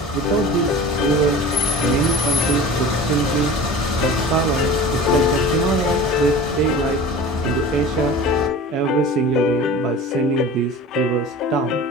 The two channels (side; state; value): both; normal; correlation 0.37